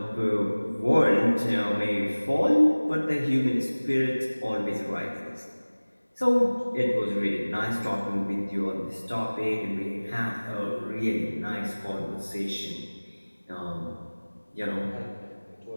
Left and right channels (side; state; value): both; inverted; correlation -1.00